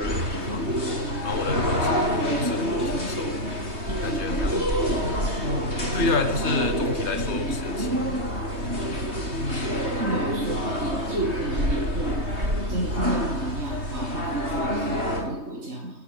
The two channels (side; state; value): left; late; 3.2 ms